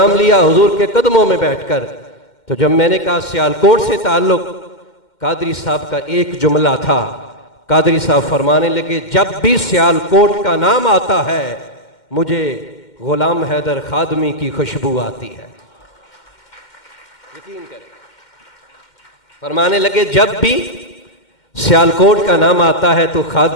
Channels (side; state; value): right; late; 2.1 ms